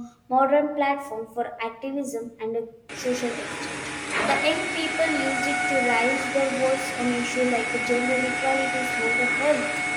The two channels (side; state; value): both; identical; correlation 1.00